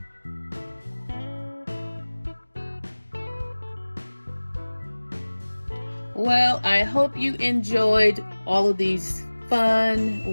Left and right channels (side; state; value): both; inverted; correlation -1.00